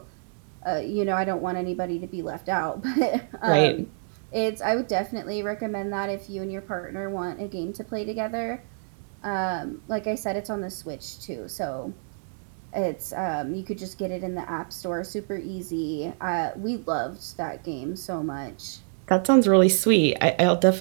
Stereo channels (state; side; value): silent; left; digital silence